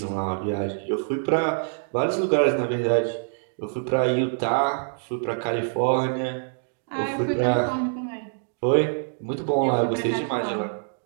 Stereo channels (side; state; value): left; silent; digital silence